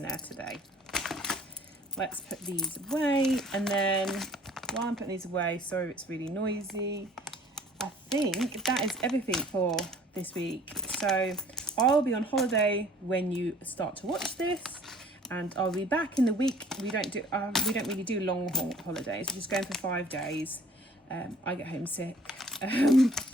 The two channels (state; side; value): normal; both; correlation 0.53